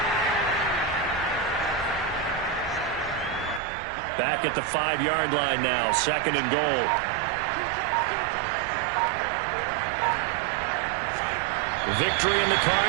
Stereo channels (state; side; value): drops out; left; at 3.6 s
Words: Back at the 5-yard line now, 2nd and goal. Victory in the